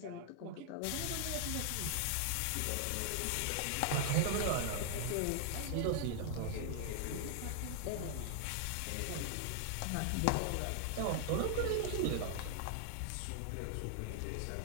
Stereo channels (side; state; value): both; different; correlation 0.00